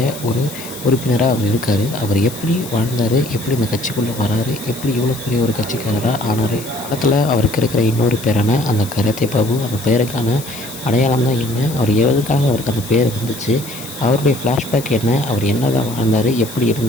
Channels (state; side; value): noise; left; hiss, 13 dB below the sound